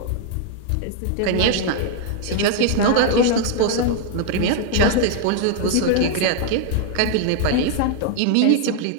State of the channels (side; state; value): both; different; correlation 0.00